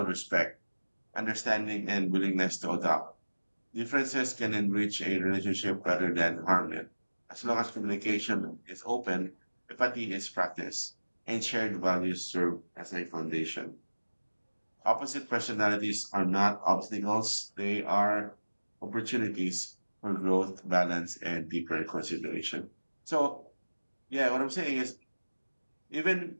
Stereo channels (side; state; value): both; inverted; correlation -1.00